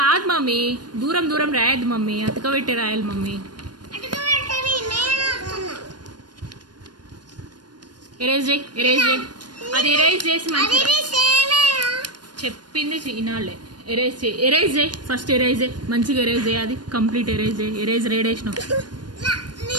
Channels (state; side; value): late; left; 0.70 ms